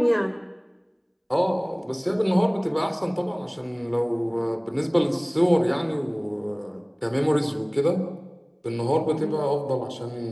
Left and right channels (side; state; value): both; identical; correlation 1.00